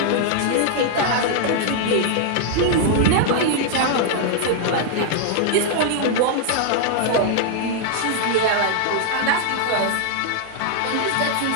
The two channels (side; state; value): both; different; correlation 0.00